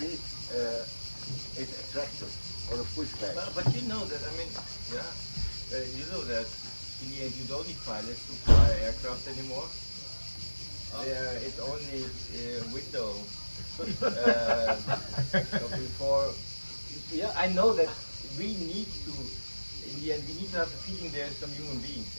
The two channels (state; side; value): inverted; both; correlation -1.00